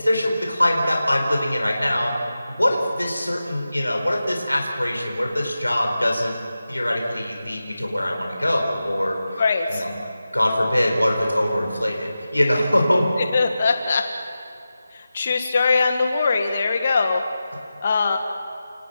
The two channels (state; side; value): inverted; both; correlation -0.93